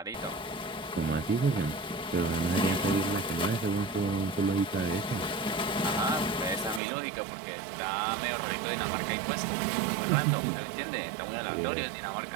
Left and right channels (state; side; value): drops out; left; at 6.8 s